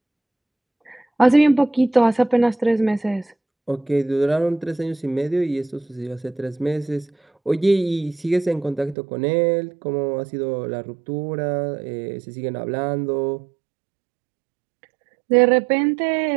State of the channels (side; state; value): left; drops out; at 9.0 s